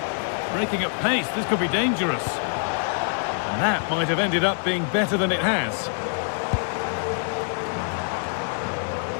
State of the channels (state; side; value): silent; right; digital silence